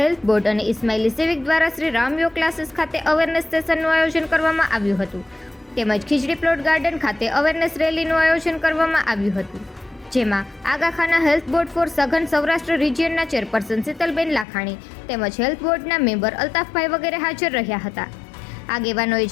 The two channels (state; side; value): drops out; right; at 14.5 s